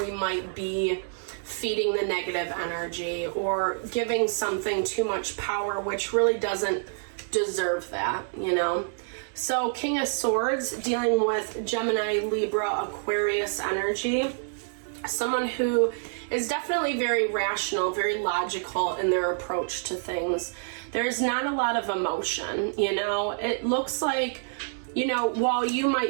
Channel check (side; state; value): left; silent; 59 dB below the other